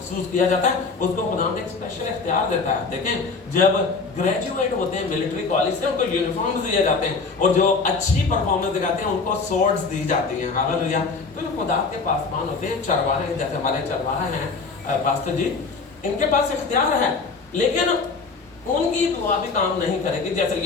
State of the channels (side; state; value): right; quieter; 4.4 dB